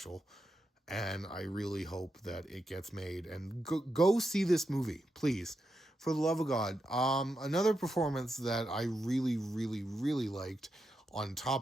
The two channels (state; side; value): normal; both; correlation 0.86